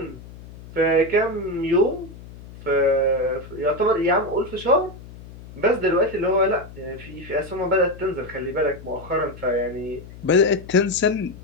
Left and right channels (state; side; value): noise; left; hum, 17 dB below the sound